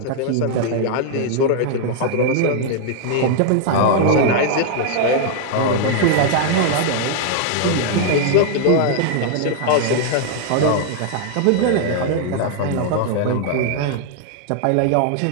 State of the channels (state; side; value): different; both; correlation 0.00